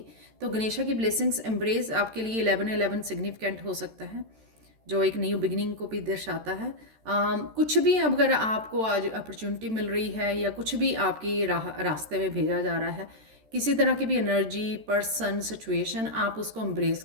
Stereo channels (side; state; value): left; late; 13 ms